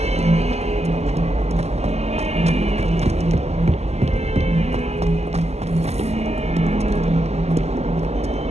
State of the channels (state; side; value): late; left; 0.31 ms